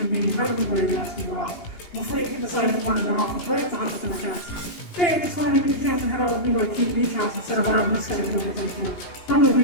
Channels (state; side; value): late; right; 18 ms